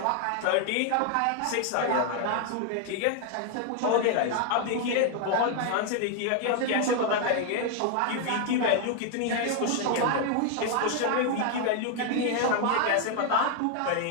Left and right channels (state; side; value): different; both; correlation 0.00